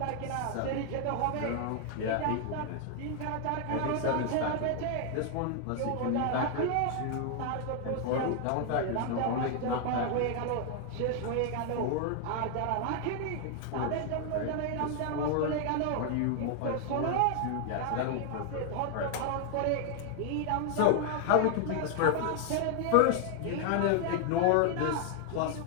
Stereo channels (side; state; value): both; different; correlation 0.00